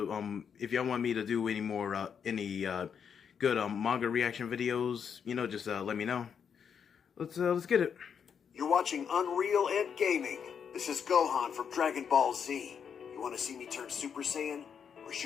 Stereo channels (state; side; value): quieter; right; 7.2 dB